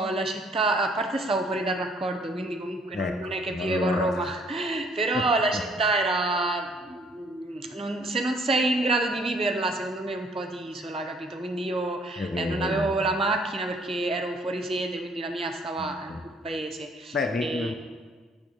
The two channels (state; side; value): normal; both; correlation 0.62